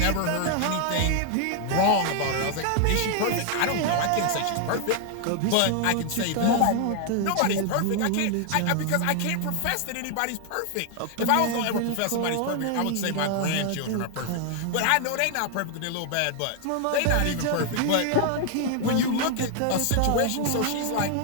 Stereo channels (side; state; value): both; different; correlation 0.00